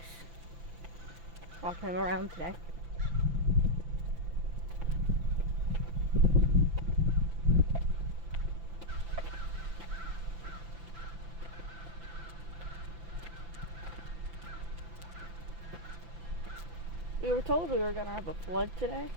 Walking him around today. We were told we were gonna have a flood today,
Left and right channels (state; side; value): late; left; 5.9 ms